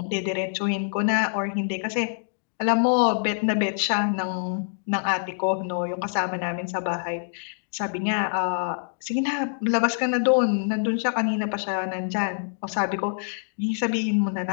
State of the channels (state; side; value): silent; right; digital silence